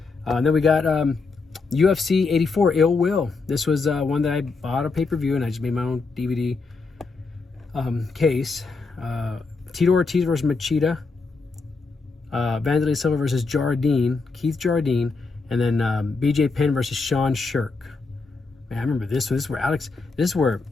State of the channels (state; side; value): quieter; right; 4.1 dB